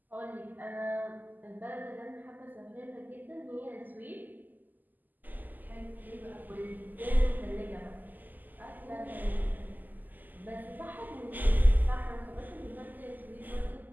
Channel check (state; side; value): late; left; 0.085 ms